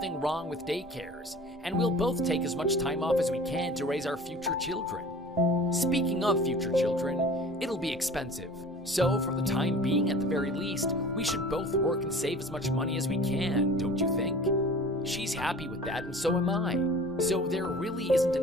wrong with daycares, and we'll both take as much time off as we can to raise our future children. Speaking of future children, it'll be expensive. So for the time being, at the very least, we should both work and save as much money as we can, don't you think? She's happy with that, and so am I. So there really isn't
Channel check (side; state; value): both; normal; correlation 0.43